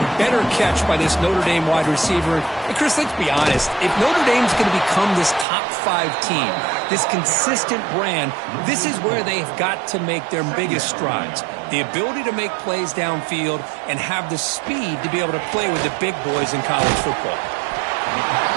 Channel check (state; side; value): drops out; left; at 5.5 s